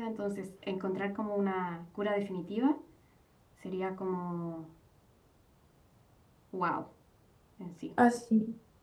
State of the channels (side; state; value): both; identical; correlation 1.00